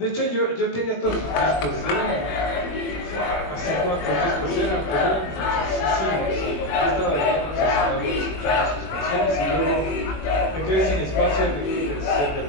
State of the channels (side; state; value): right; late; 21 ms